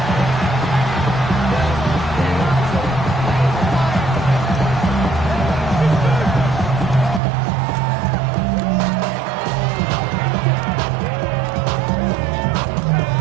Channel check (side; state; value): left; drops out; at 7.2 s